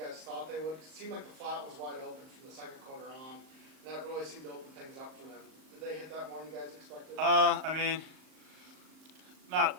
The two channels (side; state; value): left; late; 38 ms